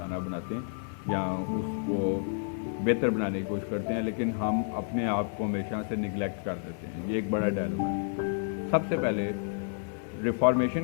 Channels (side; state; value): right; silent; digital silence